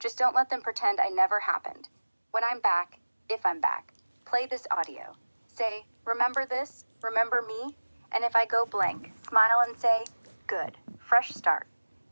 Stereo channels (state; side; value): inverted; both; correlation -1.00